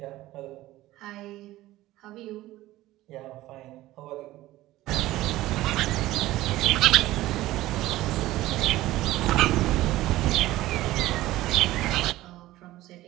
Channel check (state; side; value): quieter; left; 16.4 dB